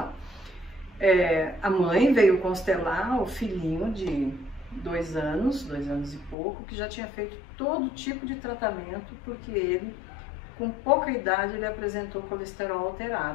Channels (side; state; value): right; drops out; at 6.4 s